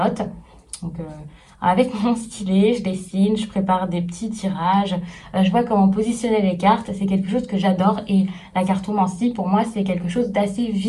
Donc, avec mon stylet, je dessine, je prépare des petits tirages, je vois comment positionner les cartes, c'est quelque chose que j'adore et la cartomancie pour moi c'est quelque chose d'assez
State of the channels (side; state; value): both; identical; correlation 1.00